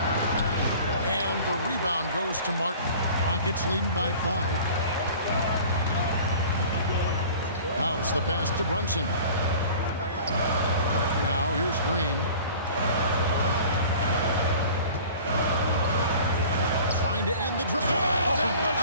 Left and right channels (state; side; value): inverted; both; correlation -0.44